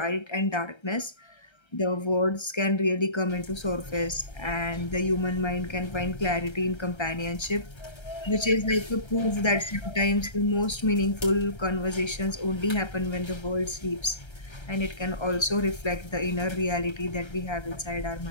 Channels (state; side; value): late; right; 1.3 ms